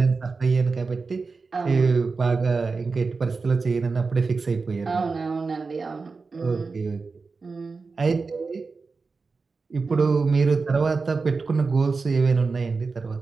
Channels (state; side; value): quieter; left; 4.4 dB